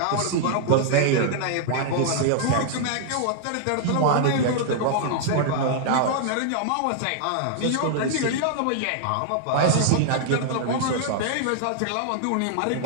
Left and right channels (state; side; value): different; both; correlation -0.01